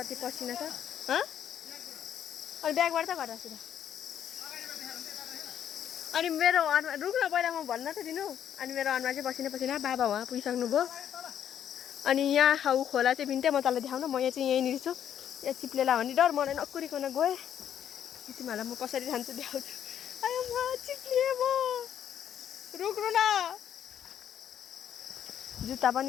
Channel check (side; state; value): right; quieter; 9.7 dB